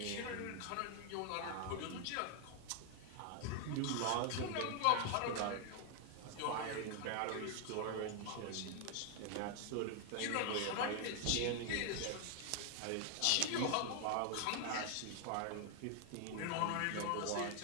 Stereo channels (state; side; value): different; both; correlation 0.00